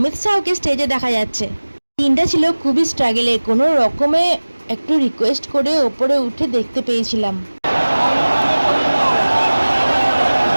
শাহকে স্টেজে দেখা যাচ্ছে। দিনটা ছিল খুবই স্ট্রাগলে, কোনো রকমে একটু রিকোয়েস্ট করে ওপরে উঠে দেখতে পেয়েছিলাম।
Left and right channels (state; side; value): inverted; both; correlation -1.00